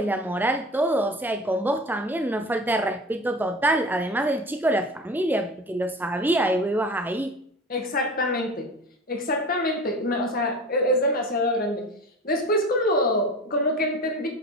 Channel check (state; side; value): normal; both; correlation 0.35